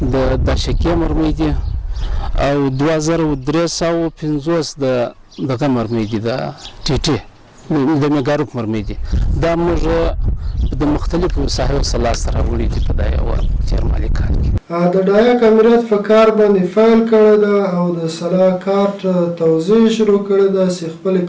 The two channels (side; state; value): both; identical; correlation 1.00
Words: د داشکې مرمۍ دي او 2350 د دغه مرمۍ دي، د ټیټي د میګاروک مرمۍ دي. دا موږ د مختلفو ساحو سره سره وړي دي په دا یو تیرمالي کال کې. د ډایک امریت په کار باندې فایل کړی ده او د سلا کارت توزیع شروع کړی ده چې خپل